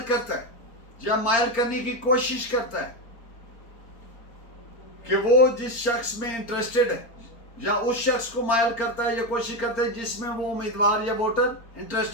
کرتا ہے یا مائل کرنے کی کوشش کرتا ہے کہ وہ جس شخص میں انٹرسٹڈ ہے، یا اس شخص کو مائل کرتا ہے یا کوشش کرتا ہے جس میں وہ امیدوار یا ووٹر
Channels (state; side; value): late; right; 4.4 ms